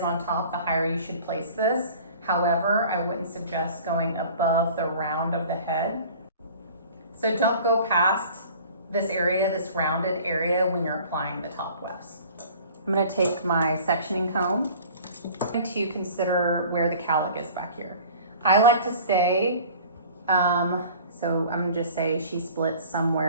on top, the higher you should place this. However, I wouldn't suggest going above the round of the head. So don't go past this area, this rounded area, when you're applying the top wefts. I'm going to take my sectioning comb. I'm going to consider where the cowlick is back here. I like to stay, so I'm going to just say she splits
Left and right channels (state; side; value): inverted; both; correlation -0.46